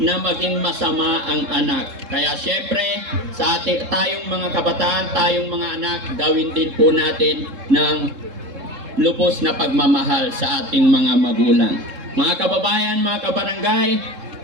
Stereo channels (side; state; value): left; late; 3.7 ms